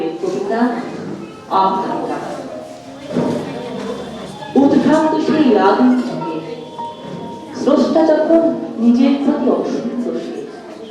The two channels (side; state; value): both; identical; correlation 1.00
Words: কবিতা আকাঙ্ক্ষা। উদ্ভ্রান্ত সেই আগুন থেকে স্রষ্টা যখন নিজের প্রতি অসন্তোষে